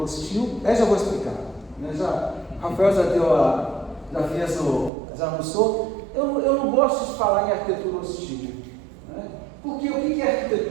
hostil, já vou explicar. Né? Rafael já anunciou. Eu não gosto de falar em arquitetura hostil. Né? Porque o que é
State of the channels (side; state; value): left; drops out; at 4.9 s